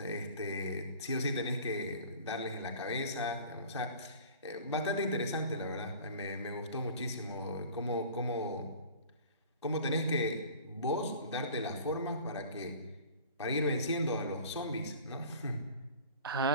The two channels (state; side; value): inverted; both; correlation -0.44